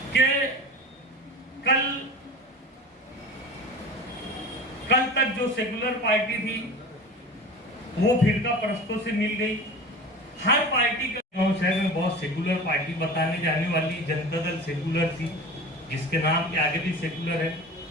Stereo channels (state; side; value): normal; both; correlation 0.35